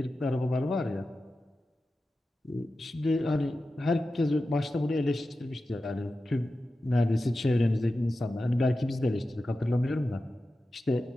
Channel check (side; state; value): both; normal; correlation 0.93